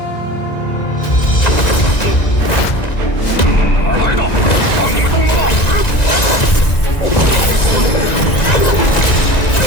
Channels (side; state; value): right; late; 1.9 ms